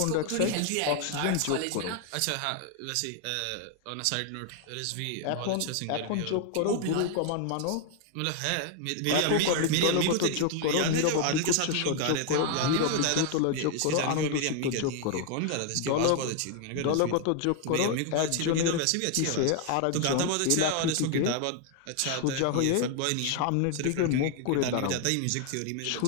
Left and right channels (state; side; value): different; both; correlation 0.00